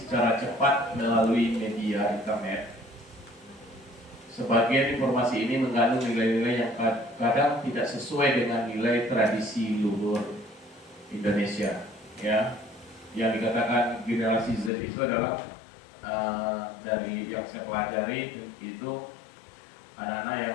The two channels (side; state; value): right; drops out; at 14.7 s